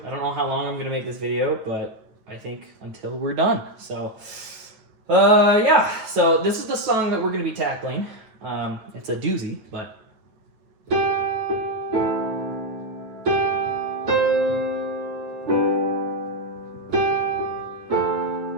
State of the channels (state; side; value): late; left; 9.2 ms